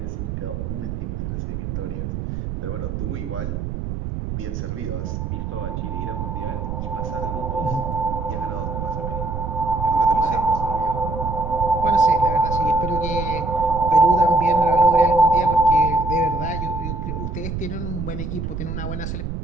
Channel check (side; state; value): right; noise; rumble, 4 dB below the sound